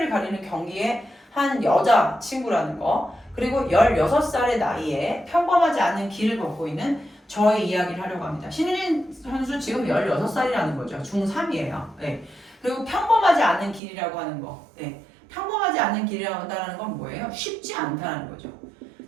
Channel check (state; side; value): drops out; left; at 13.8 s